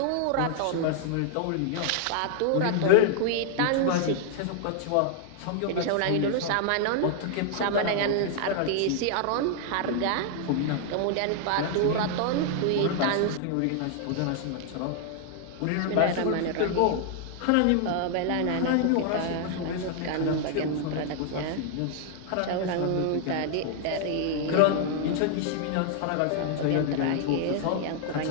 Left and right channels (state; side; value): different; both; correlation 0.00